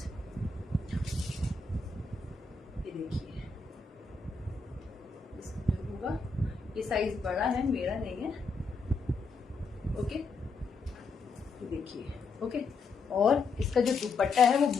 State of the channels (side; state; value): right; quieter; 4.2 dB